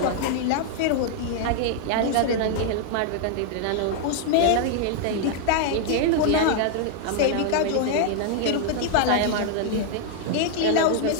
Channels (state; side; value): different; both; correlation 0.00